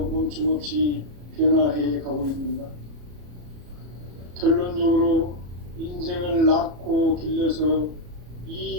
멈춤없이 변화해 가고 있는가? 결론적으로 인생을 낳고 길러서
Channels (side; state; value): left; late; 34 ms